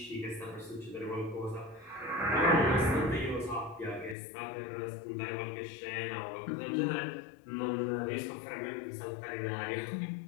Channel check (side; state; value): right; drops out; at 4.2 s